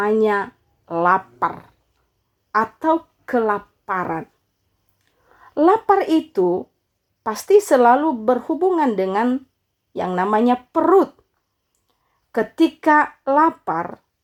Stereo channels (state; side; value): identical; both; correlation 1.00